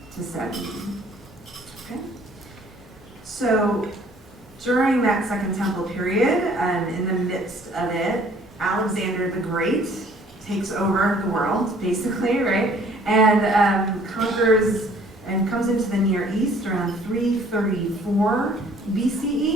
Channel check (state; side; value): normal; both; correlation 0.57